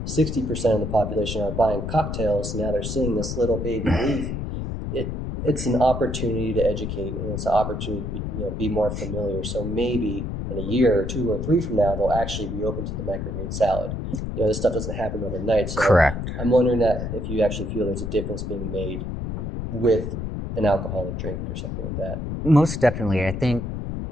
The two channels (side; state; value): left; noise; rumble, 4 dB below the sound